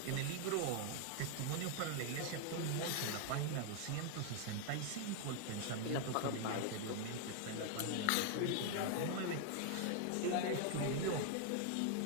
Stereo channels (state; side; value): different; both; correlation 0.00